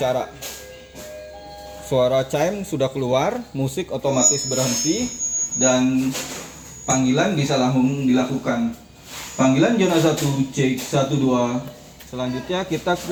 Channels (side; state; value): both; identical; correlation 1.00